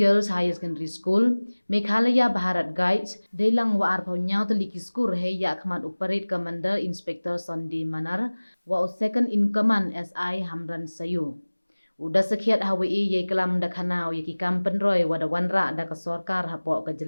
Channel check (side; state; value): both; inverted; correlation -1.00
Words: Higher Secondary School, Meghalaya Bharat Guides, Dailang wa arpau nyau teliki skur he ya khmat operate commander Inspector Sunday Manar wa second in command SI Hamran Sayu. Udah sekiat hawi ye kelam da khanau ye ki kampen roy wada wanra da ka sarkar hapo ka